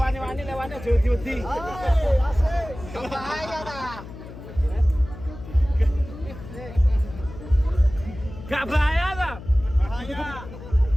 Lewatnya jauh-jauh. Bahaya tak? Gak bahaya lah.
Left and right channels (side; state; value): left; noise; hum, 14 dB below the sound